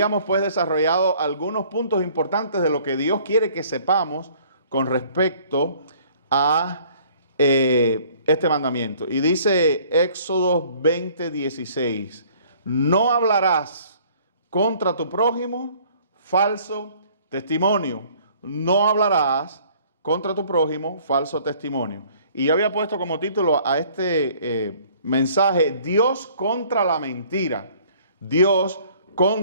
pues desarrollado algunos puntos importantes de lo que Dios quiere que sepamos con respecto a este mandamiento. Y dice Éxodo 20:16, no hablarás contra tu prójimo falso testimonio. No hablarás contra tu prójimo falso testimonio. Y yo había puesto como título a este mensaje, Dios contra la mentira. Dios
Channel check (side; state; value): both; inverted; correlation -0.56